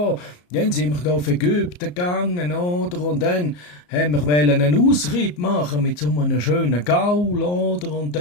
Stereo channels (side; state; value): right; late; 34 ms